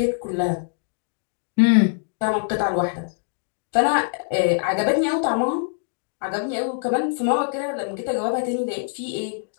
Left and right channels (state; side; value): silent; right; digital silence